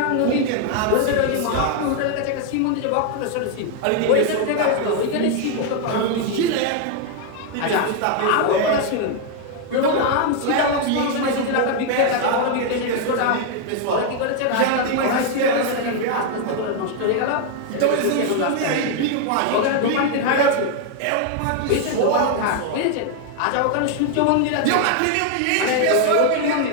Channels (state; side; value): different; both; correlation 0.00